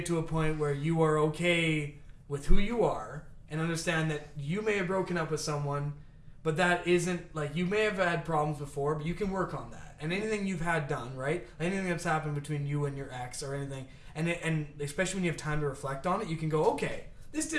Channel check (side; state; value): both; identical; correlation 1.00